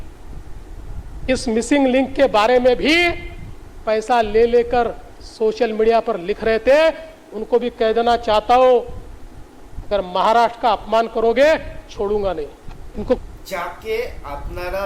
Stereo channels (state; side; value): identical; both; correlation 1.00